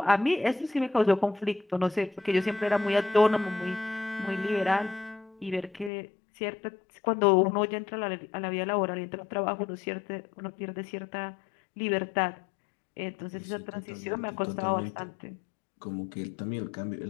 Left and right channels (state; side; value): drops out; right; at 5.9 s